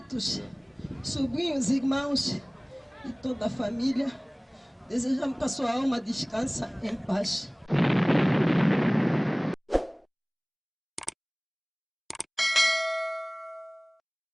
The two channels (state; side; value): identical; both; correlation 1.00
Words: sobrinhos, irmãos e toda a família, desejamos que a sua alma descanse em paz.